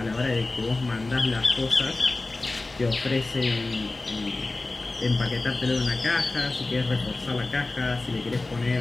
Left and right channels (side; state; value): right; quieter; 3.2 dB